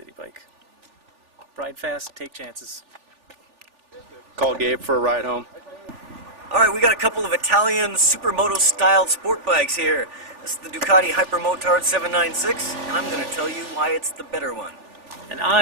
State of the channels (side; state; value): left; late; 3.4 ms